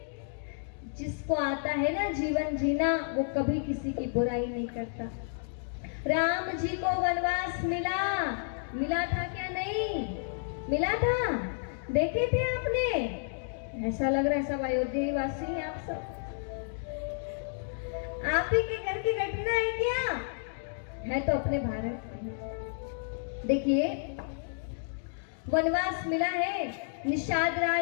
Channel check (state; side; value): silent; right; digital silence